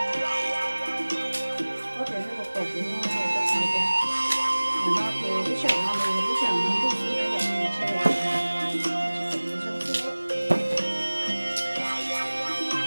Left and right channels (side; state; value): both; inverted; correlation -1.00